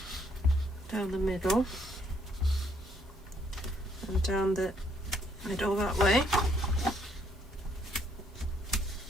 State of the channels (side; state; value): both; normal; correlation 0.69